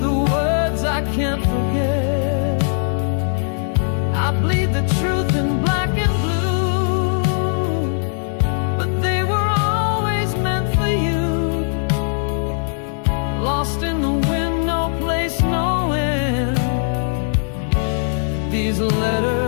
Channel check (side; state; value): right; silent; digital silence